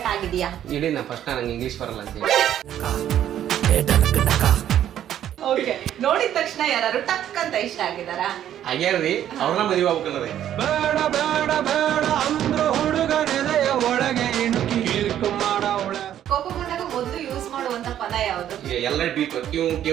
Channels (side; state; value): left; quieter; 11.0 dB